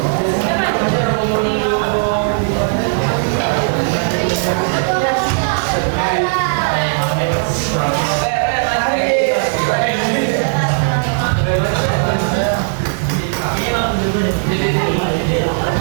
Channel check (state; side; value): silent; left; digital silence